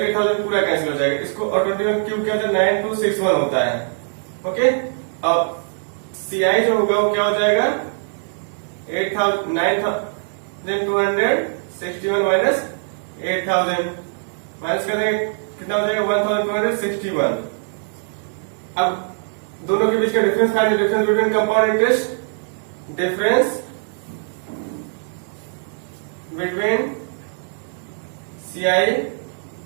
8000 पूरा कैंसिल हो जाएगा. इसको और 21 क्यूब क्या होता है? 9261 होता है. ओके. अब CI जो होगा वो क्या हो जाएगा? 9261 माइनस 8000 माइनस करने कितना हो जाएगा? 1261. अब दोनों के बीच का difference find the difference between compound interest. Difference between CI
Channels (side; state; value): left; silent; 65 dB below the other